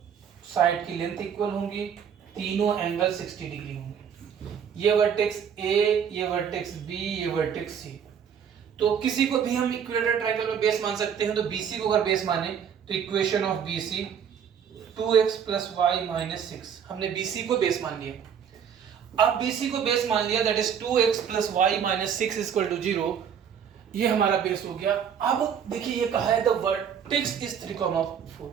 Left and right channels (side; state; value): left; quieter; 7.9 dB